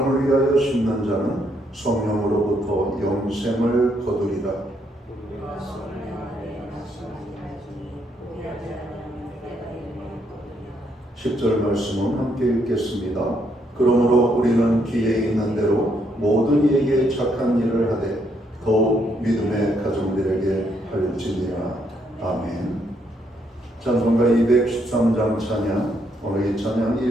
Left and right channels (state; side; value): normal; both; correlation 0.74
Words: 위하여 심는 자는 성령으로부터 영생을 거두리라. 10절 말씀은 함께 읽겠습니다. 그러므로 우리는 귀에 있는 대로 모든 이에게 착한 일을 하되 더욱 믿음의 가정들에게 할지니라. 아멘. 찬송가 213장 찬양, 오늘 이 찬양